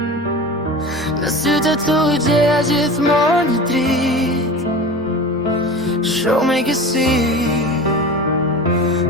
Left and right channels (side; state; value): both; normal; correlation 0.33